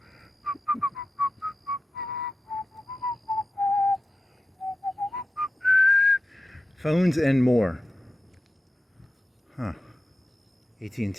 Phones and more.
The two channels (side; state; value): both; normal; correlation 0.93